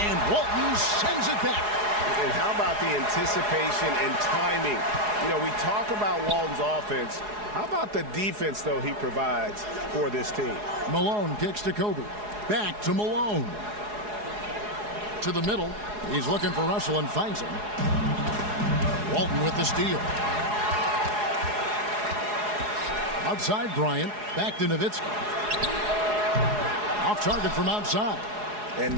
Walton sends it back. And how about the anticipation and timing? You know, we talk about Walton's offense. How about the defense, though, he provides for this team? Malone kicks to Kobe. Back to Malone. To the middle. He's looking for Russell and finds him. Walton with the steal. Outside Bryant. Back to Nowitzki. Off target from outside.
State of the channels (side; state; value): left; late; 4.8 ms